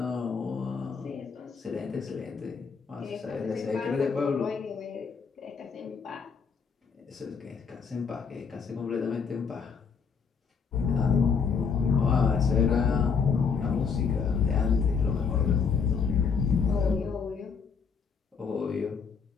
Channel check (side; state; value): right; quieter; 5.8 dB